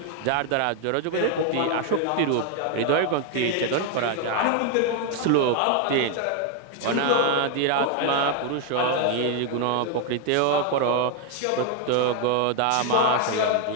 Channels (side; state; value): both; different; correlation 0.01